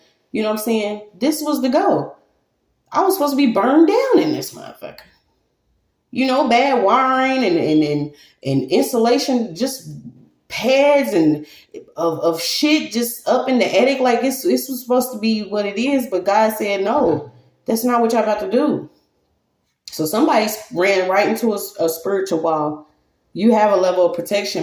you know what I'm saying? This was the go. I was supposed to be burned down in this motherfucker. You know, bad wiring and insulation, just pads and of shit just up in the attic. Like it's was supposed to be what it is, but God said, no, that's not what y'all about to do. So somebody ran right into a spiritual wall. You have a level of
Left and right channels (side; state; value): both; identical; correlation 1.00